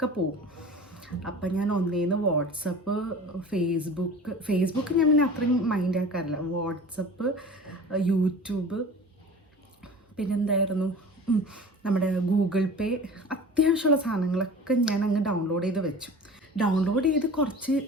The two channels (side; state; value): both; normal; correlation 0.39